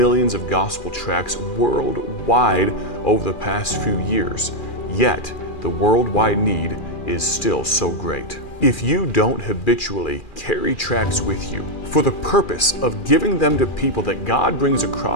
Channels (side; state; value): right; late; 2.4 ms